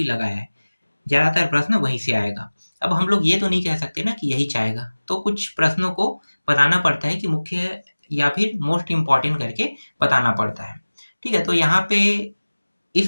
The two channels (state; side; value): inverted; both; correlation -1.00